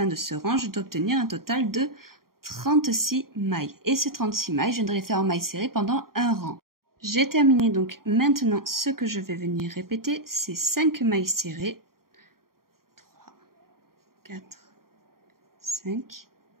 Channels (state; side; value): late; left; 0.93 ms